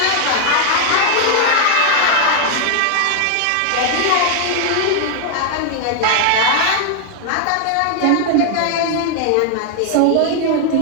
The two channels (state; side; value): different; both; correlation 0.00